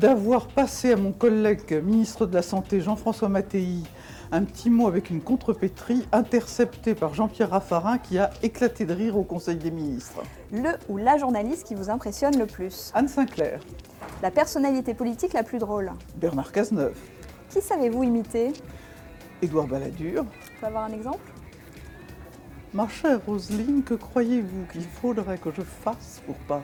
passé à mon collègue ministre de la Santé, Jean-François Mattei, un petit mot avec une contrepétrie interceptée par Jean-Pierre Raffarin qui a éclaté de rire au Conseil des ministres. Le ou la journaliste qui vous impressionne le plus. Anne Sinclair, La personnalité politique la plus drôle. Bernard Cazeneuve, Qui savez-vous imiter? Édouard Balladur. Je peux avoir un exemple? Ma chère Roselyne, que croyez-vous qu'il faudrait que je fasse pour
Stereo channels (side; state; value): both; identical; correlation 1.00